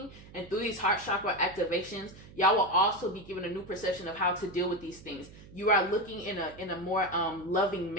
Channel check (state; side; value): noise; right; hum, 19 dB below the sound